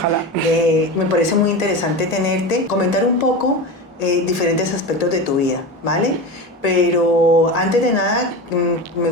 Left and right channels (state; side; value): normal; both; correlation 0.25